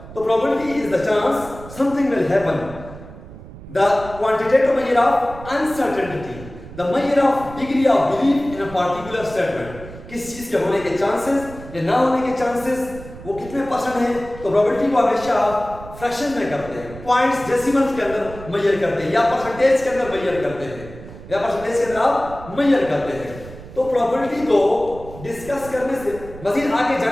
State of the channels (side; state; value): right; noise; rumble, 15 dB below the sound